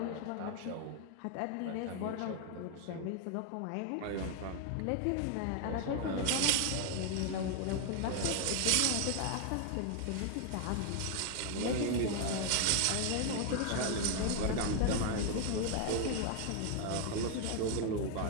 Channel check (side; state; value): both; different; correlation 0.01